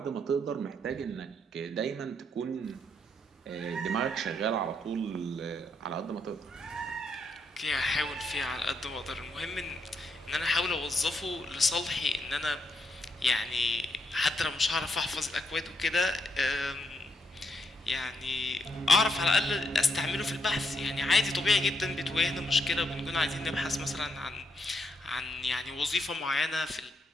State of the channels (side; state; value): both; normal; correlation 0.77